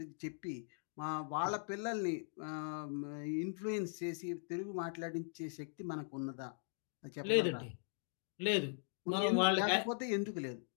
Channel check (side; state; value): right; silent; digital silence